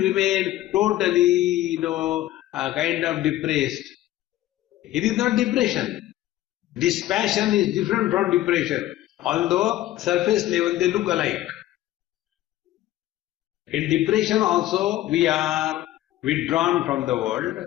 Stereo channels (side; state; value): right; quieter; 14.8 dB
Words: remain totally, kind of depressed. It is not depression. Dispassion is different from depression, although surface level they look alike. In depression also we are withdrawn from the world,